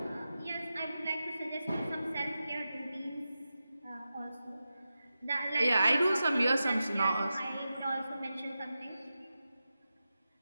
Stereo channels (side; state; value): both; inverted; correlation -0.92